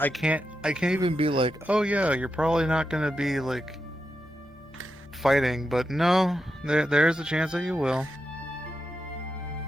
I can't even be like, oh yeah, you're probably not gonna be like fighting, but no, there's a chance that you will.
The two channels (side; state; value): both; normal; correlation 0.87